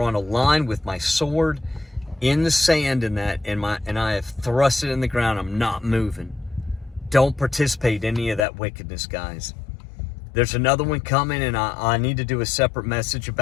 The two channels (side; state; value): right; drops out; at 8.5 s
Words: a line with my sword in the sand and I have thrust it in the ground. I'm not moving. Don't participate in any of that wickedness, guys. There's another one coming, and I need to do a separate message